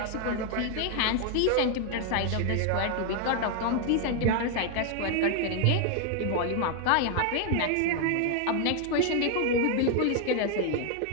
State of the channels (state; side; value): different; both; correlation 0.00